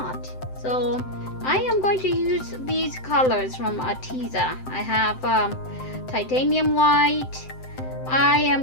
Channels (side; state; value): right; late; 7.8 ms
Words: So I am going to use these colors from Artist. I have titanium white. I am